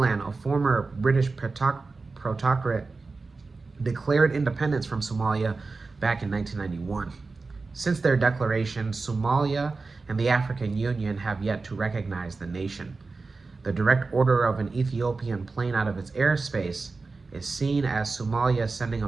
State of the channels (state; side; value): quieter; left; 4.0 dB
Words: a former British protectorate, declared independence from Somalia back in 1991. Since their declaration, Somalia and the African Union have yet to recognize the nation. The direct order of an Ethiopian plane out of its airspace is seen as Somalia sending a